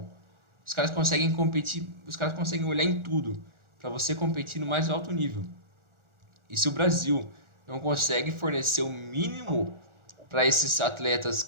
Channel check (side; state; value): left; late; 1.4 ms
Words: Os caras conseguem competir, os caras conseguem olhar em tudo para você competir no mais alto nível. E se o Brasil não consegue fornecer o mínimo para esses atletas